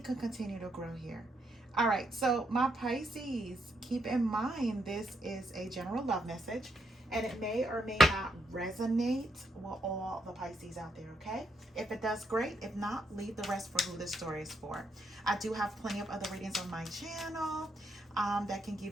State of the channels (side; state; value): both; normal; correlation 0.77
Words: can continue to grow here. All right, so my Pisces, keep in mind this is a general love message and it may or may not resonate with all the Pisces out there, okay? If it does, great. If not, leave the rest for who this story is for. I do have plenty of other readings on my channel that can